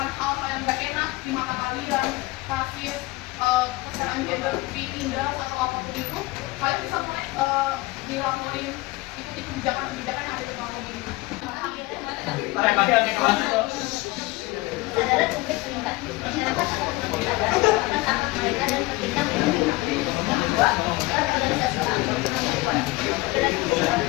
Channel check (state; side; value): quieter; right; 21.2 dB